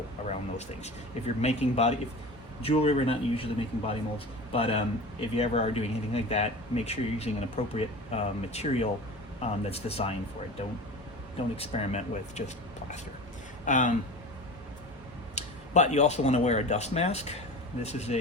around those things. If you're making jewelry, we're not usually making body molds, but if you ever are doing anything like that, make sure you're using an appropriate material that's designed for it. Don't experiment with just plaster. But you also want to wear a dust mask. This is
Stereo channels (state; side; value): normal; both; correlation 0.34